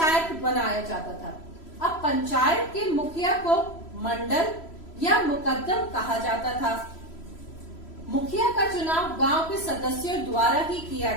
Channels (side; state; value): right; late; 3.0 ms